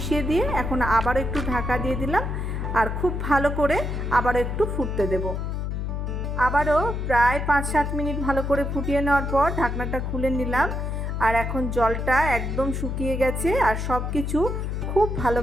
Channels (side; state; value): left; noise; hum, 2 dB below the sound